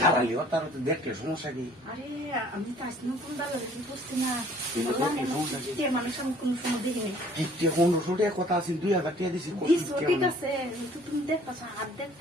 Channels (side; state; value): both; normal; correlation 0.55